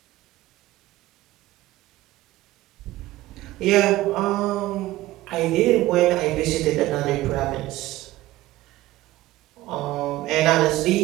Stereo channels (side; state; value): left; quieter; 16.7 dB